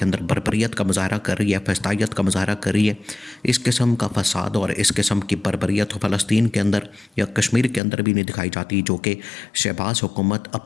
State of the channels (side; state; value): right; drops out; at 7.8 s